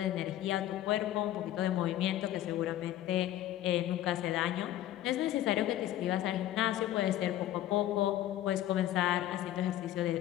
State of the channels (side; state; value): right; quieter; 13.4 dB